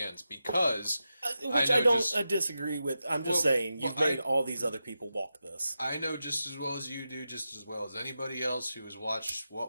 because which I don't disagree with. I'm just saying you've made all these other people walk this. I know just as well as you do, just as well as anybody else who has watched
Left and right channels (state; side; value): inverted; both; correlation -0.90